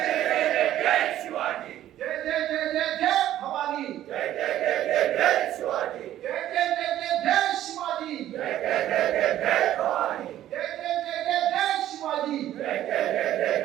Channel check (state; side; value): quieter; left; 12.7 dB